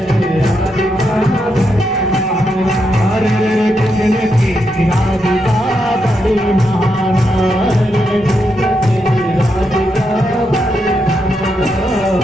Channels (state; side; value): normal; both; correlation 0.82